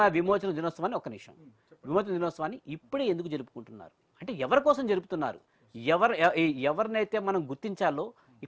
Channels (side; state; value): both; identical; correlation 1.00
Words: విమోచన దినోత్సవాన్ని విమోచన దినోత్సవాన్ని ఇప్పుడే ఎందుకు జరుపుకుంటున్నారు? అంటే ఎవరి కోసం జరుపుతున్నారు? ఎవరినైతే మనం గుర్తించాలో